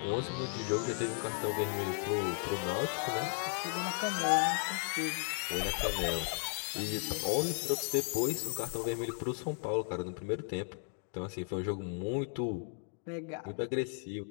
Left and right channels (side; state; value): right; silent; 54 dB below the other